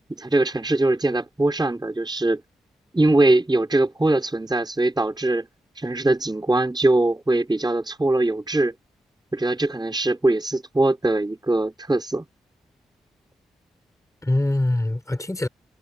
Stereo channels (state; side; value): normal; both; correlation 0.90